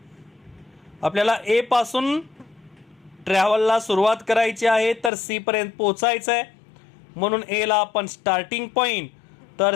आपल्याला ए पासून ट्रॅव्हलला सुरुवात करायची आहे तर सी पर्यंत पोहोचायचं आहे, म्हणून एला आपण स्टार्टिंग पॉईंट तर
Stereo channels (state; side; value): drops out; right; at 5.1 s